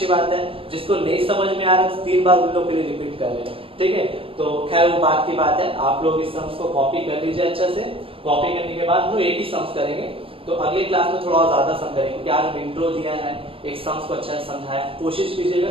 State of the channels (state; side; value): late; left; 0.26 ms